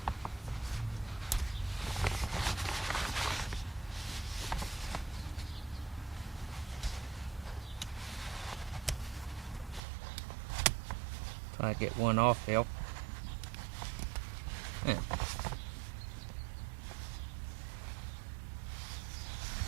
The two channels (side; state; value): left; drops out; at 9.8 s